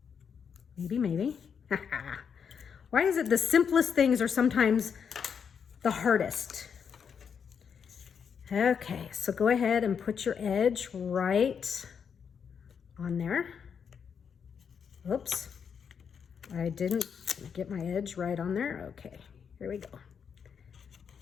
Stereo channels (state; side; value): quieter; right; 6.9 dB